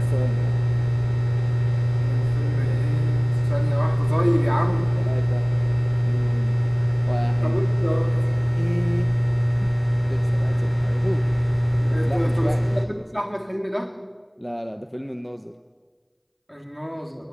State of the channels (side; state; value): both; identical; correlation 1.00